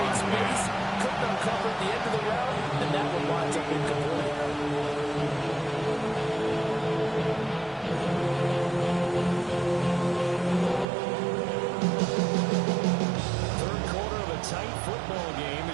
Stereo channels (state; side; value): drops out; left; at 10.9 s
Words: space. Couldn't uncover at the end of the round. And that one winds up incomplete. Third quarter of a tight football game